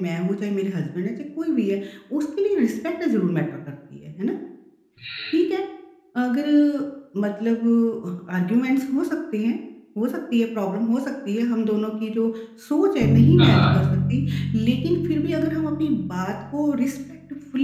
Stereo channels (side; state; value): both; identical; correlation 1.00